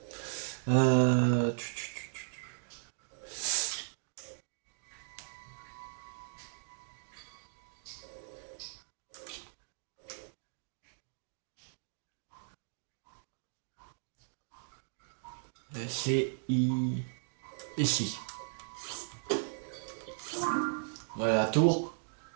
Euh... tu- tu- C'est ici. Voilà la tour.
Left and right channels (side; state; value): left; silent; digital silence